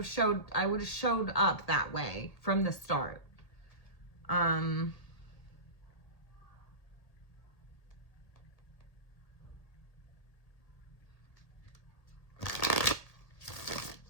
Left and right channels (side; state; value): right; late; 1.8 ms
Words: showed up that way from the start.